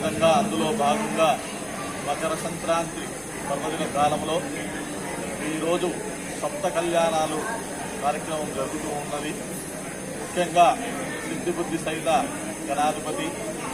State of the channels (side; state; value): both; identical; correlation 1.00